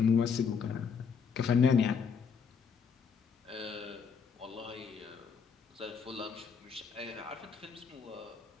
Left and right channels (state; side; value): quieter; right; 6.1 dB